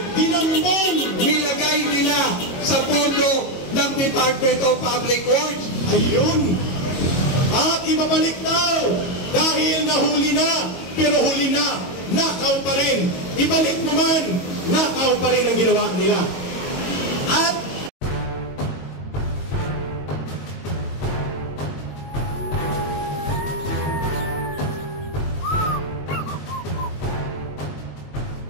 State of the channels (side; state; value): right; late; 22 ms